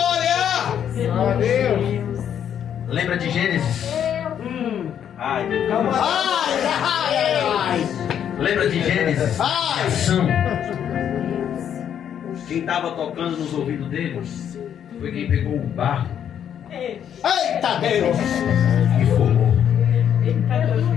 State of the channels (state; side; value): quieter; right; 9.2 dB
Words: Glória a Deus. Lembra de Gênesis? Ai, meu Deus. Ai! Lembra de Gênesis? Ai! Ação. Quem estava tocando nos ouvidos dele foi quem pegou o barro Eita Deus! e formou.